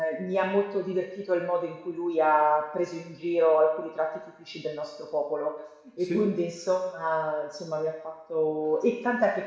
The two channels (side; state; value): both; identical; correlation 1.00